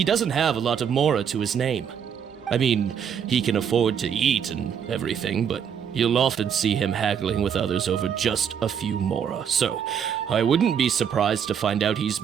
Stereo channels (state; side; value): quieter; left; 7.9 dB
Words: doesn't have a lot of mora to his name. I mean, he can afford to eat and everything, but you'll often see him haggling with others over just a few mora, so I wouldn't be surprised to find out he's